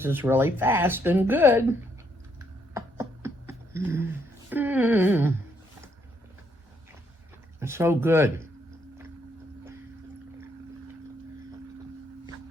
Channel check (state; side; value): normal; both; correlation 0.73